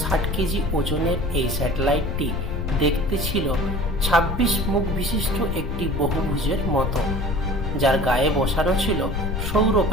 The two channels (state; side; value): noise; left; rumble, 2 dB below the sound